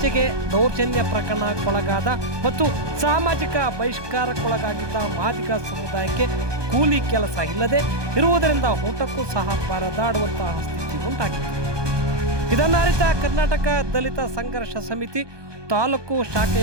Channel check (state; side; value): late; left; 1.2 ms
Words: ದೌರ್ಜನ್ಯ ಪ್ರಕರಣಕ್ಕೊಳಗಾದ ಮತ್ತು ಸಾಮಾಜಿಕ ಬಹಿಷ್ಕಾರಕ್ಕೊಳಗಾಗಿದ್ದ ಮಾದಿಗ ಸಮುದಾಯಕ್ಕೆ ಕೂಲಿ ಕೆಲಸ ಇಲ್ಲದೆ ಇರುವುದರಿಂದ ಊಟಕ್ಕೂ ಸಹ ಪರದಾಡುವಂತಹ ಸ್ಥಿತಿ ಉಂಟಾಗಿದೆ. ಇದನ್ನರಿತ ಕರ್ನಾಟಕ ದಲಿತ ಸಂಘರ್ಷ ಸಮಿತಿ ತಾಲೂಕು